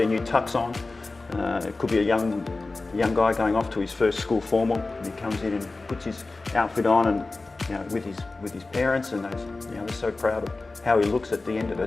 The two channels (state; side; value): quieter; right; 3.4 dB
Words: new tux on. It could be a young guy going off to his first school formal, and he comes in and puts his outfit on, and you know, with his parents, and they're so proud of how he looks at the end of